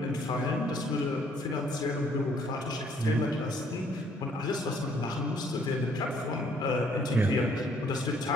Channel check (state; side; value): normal; both; correlation 0.64